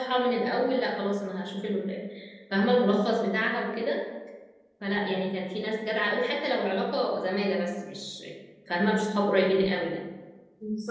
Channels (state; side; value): identical; both; correlation 1.00